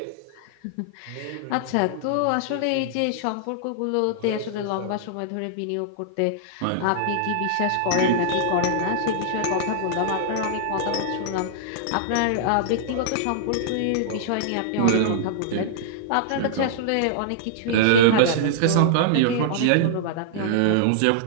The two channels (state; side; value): different; both; correlation -0.01